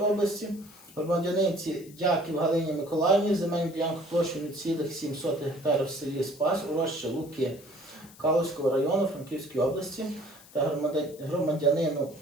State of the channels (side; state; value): left; noise; hiss, 22 dB below the sound